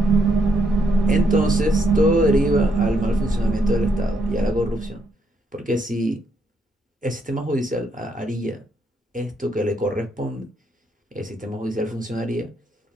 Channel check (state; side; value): normal; both; correlation 0.75